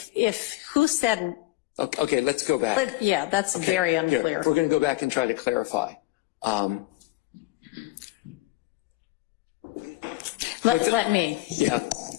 who said. Okay, let's go back. But yeah, that's Okay, very here, unclear. we're going to go back and try to clarify. Let me. Yeah.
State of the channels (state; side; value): quieter; right; 19.3 dB